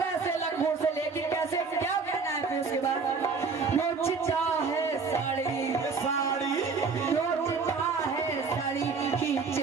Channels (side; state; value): left; quieter; 4.9 dB